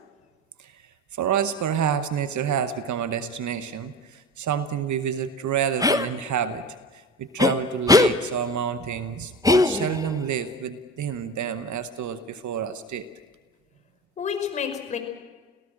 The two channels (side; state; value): both; normal; correlation 0.30